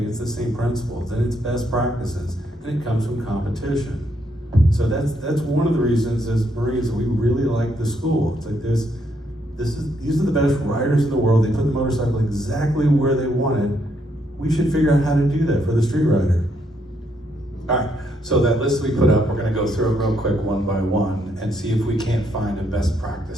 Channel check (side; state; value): both; normal; correlation 0.74